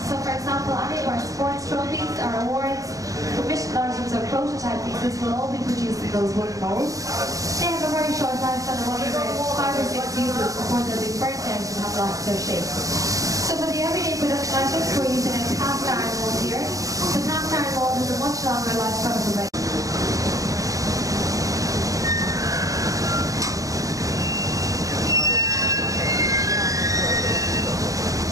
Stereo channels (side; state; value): left; late; 0.16 ms